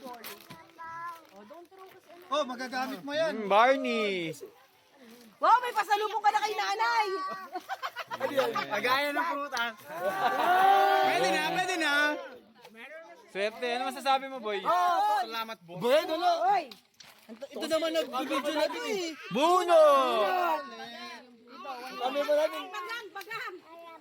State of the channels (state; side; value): identical; both; correlation 1.00